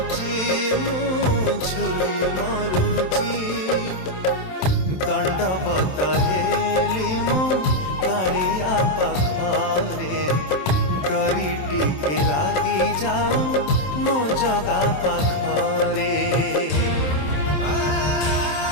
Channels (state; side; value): late; right; 27 ms